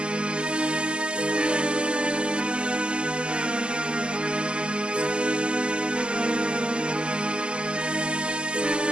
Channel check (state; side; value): late; left; 0.050 ms